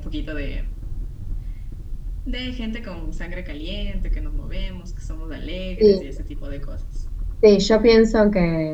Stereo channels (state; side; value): identical; both; correlation 1.00